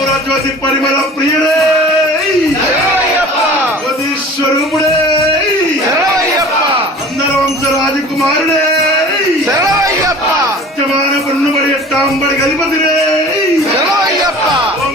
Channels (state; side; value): normal; both; correlation 0.42